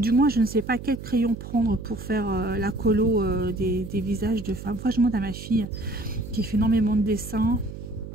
moins je ne sais pas quel crayon prendre pour faire la colo des visages de femmes. Enfin je demande à ma fille qui fait énormément de dessins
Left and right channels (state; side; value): noise; right; hum, 11 dB below the sound